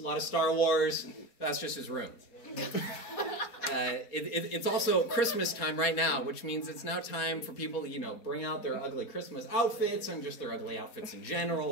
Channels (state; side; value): late; right; 4.3 ms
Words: lot of Star Wars. That's just his room. It's also Christmas time right now, which means it's now time for people to, bring out their ugly Christmas outfits and just their ugly outfits in general,